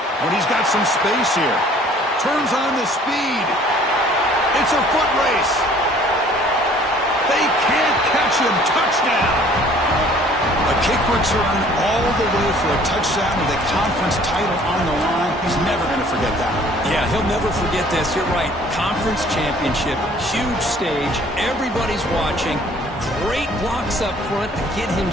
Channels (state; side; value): normal; both; correlation 0.55